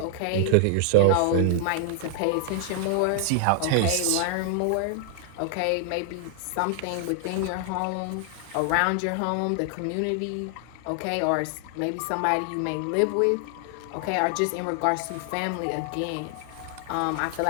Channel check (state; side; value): different; both; correlation 0.00